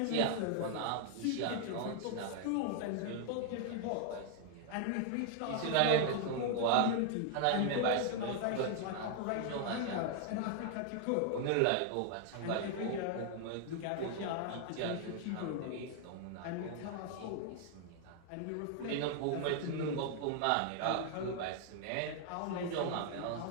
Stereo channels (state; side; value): different; both; correlation 0.00